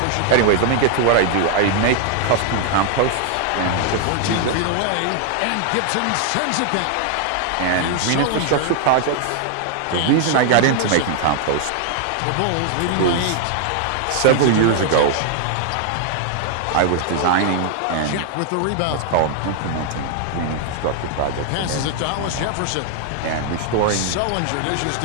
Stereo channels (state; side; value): different; both; correlation 0.00